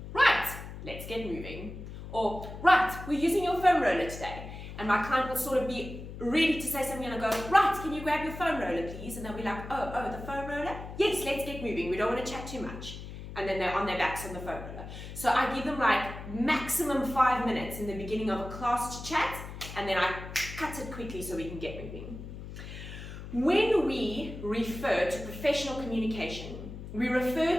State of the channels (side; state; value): left; noise; hum, 11 dB below the sound